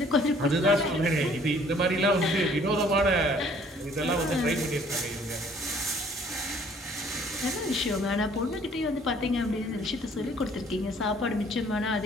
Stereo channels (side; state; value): both; normal; correlation 0.58